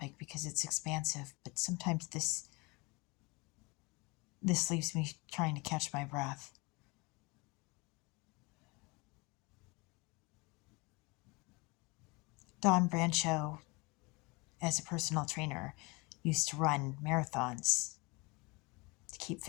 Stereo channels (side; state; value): right; quieter; 26.6 dB